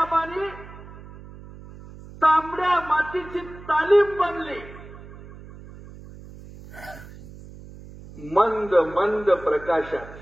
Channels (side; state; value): right; noise; hum, 17 dB below the sound